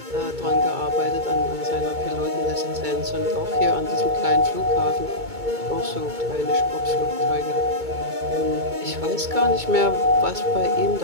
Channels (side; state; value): left; late; 2.2 ms